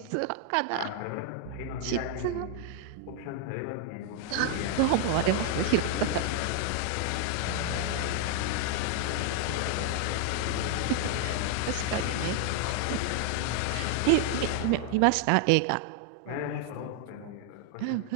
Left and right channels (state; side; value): different; both; correlation 0.00